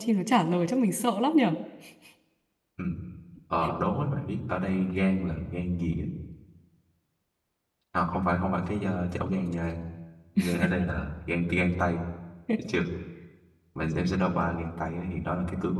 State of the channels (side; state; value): both; identical; correlation 1.00